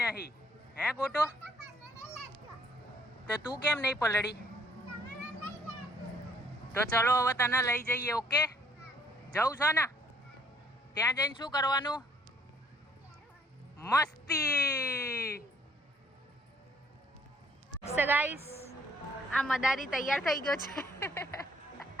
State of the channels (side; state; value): both; normal; correlation 0.64